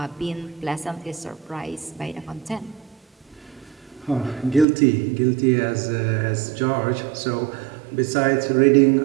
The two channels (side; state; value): left; drops out; at 4.7 s